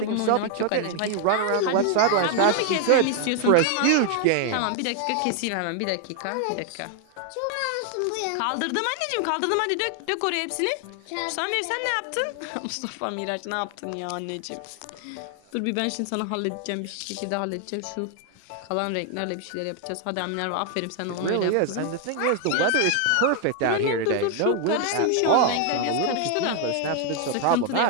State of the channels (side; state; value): both; different; correlation 0.00